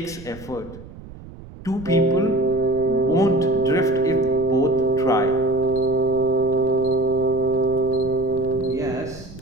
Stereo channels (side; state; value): right; noise; rumble, 16 dB below the sound